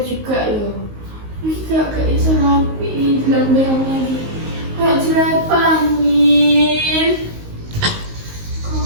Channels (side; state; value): left; late; 19 ms